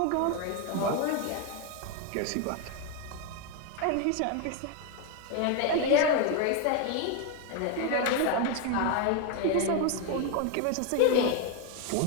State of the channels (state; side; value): different; both; correlation 0.01